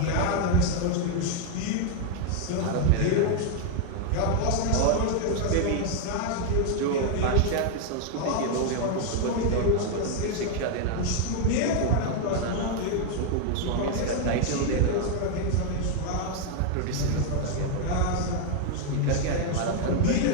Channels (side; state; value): both; different; correlation 0.00